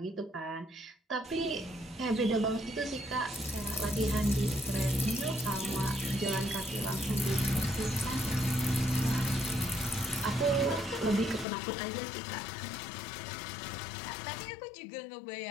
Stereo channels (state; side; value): drops out; right; at 11.5 s